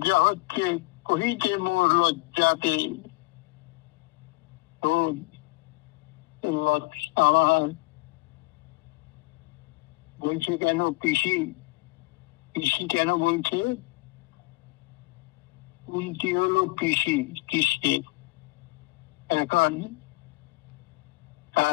হচ্ছে, কহিতে মোর লজ্জাতে, তো আমার বলছে কেন পিসি, পিসি কেন বলছে? কুন্তি হলো পিসি কৃষ্ণের, এখন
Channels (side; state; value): right; quieter; 22.9 dB